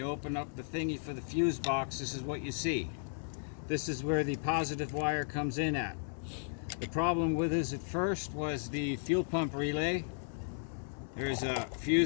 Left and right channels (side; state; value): right; silent; digital silence